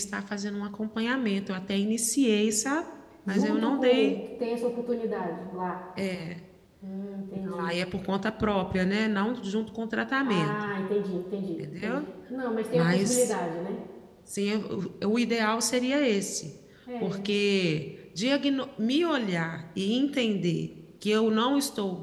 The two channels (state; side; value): identical; both; correlation 1.00